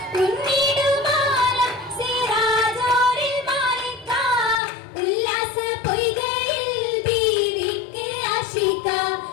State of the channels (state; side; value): drops out; right; at 4.6 s